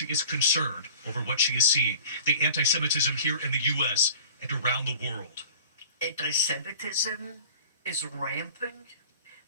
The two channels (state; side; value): inverted; both; correlation -0.43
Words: is concerned over what she is seeing, the anti-Semitism here in the U.S. and around the world. Anti-Semitism is rampant.